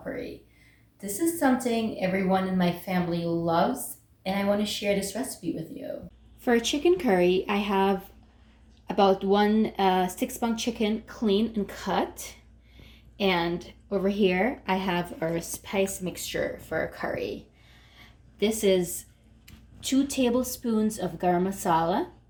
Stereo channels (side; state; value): both; identical; correlation 1.00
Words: This is something everyone in my family loves and I want to share this recipe with you. For chicken curry, I have about one 6-pound chicken clean and cut. And over here, I have our spice mixture for our curry. This is 2 tablespoons of Garam Masala,